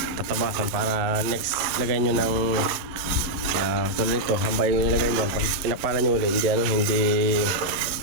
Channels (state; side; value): late; left; 11 ms